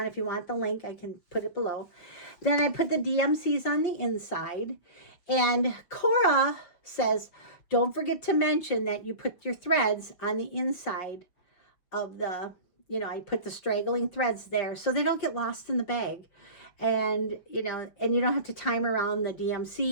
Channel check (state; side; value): late; right; 5.9 ms